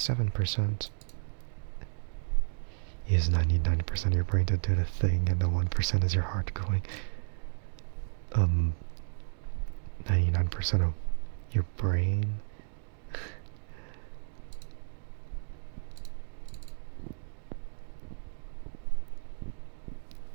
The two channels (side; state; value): left; silent; digital silence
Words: Use 99% of your brain to do the thing, and the 1% is your heart going. 99% of your brain.